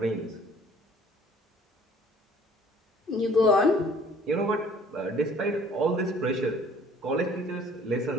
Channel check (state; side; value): normal; both; correlation 0.55